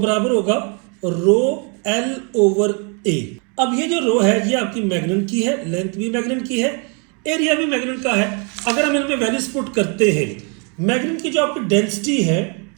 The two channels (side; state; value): left; quieter; 35.7 dB